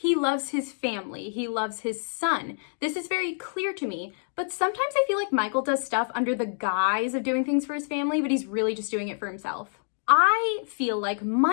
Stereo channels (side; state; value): right; silent; digital silence